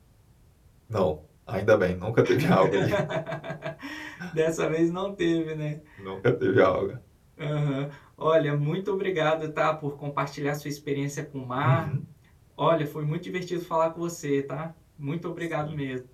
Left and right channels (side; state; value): both; identical; correlation 1.00